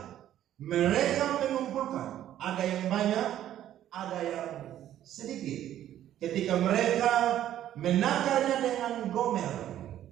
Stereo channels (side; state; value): left; quieter; 11.8 dB